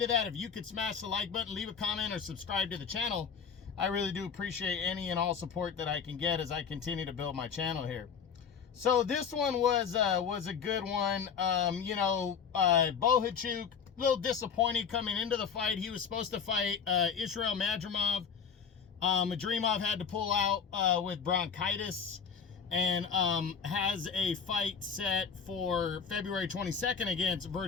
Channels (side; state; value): right; quieter; 6.6 dB